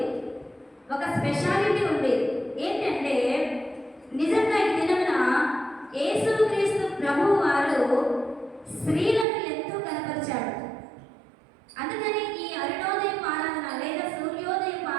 ఒక స్పెషాలిటీ ఉంది. ఏంటంటే నిజంగా ఈ దినమున యేసుక్రీస్తు ప్రభువు వారు స్త్రీలను ఎంతో కనపరిచాడు. అందుకని ఈ అరుణోదయం ఆరాధన లేదా సూర్యోదయం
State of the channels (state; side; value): drops out; left; at 9.2 s